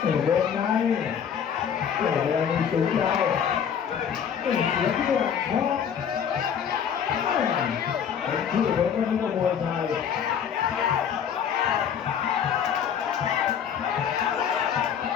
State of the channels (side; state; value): right; quieter; 8.0 dB